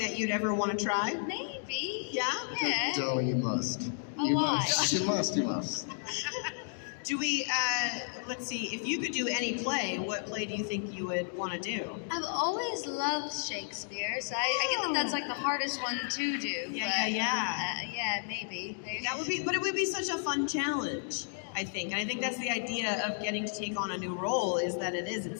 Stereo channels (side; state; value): right; silent; digital silence